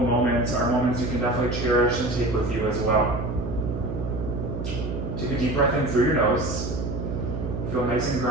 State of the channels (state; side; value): noise; right; hum, 5 dB below the sound